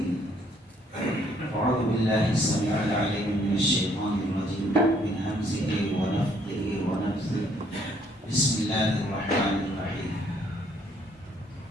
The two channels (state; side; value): normal; both; correlation 0.65